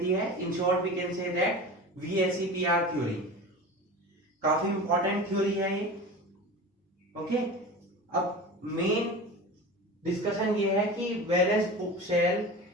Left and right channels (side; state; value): both; normal; correlation 0.32